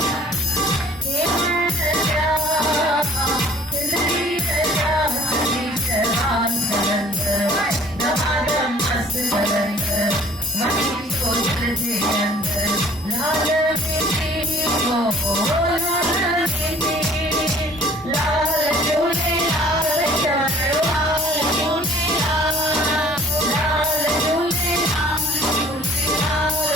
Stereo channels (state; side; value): normal; both; correlation 0.53